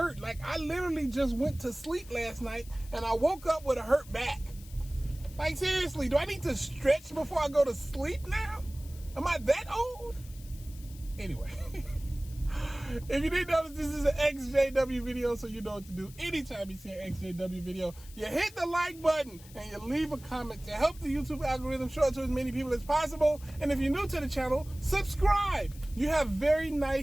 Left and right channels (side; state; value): left; noise; hiss, 21 dB below the sound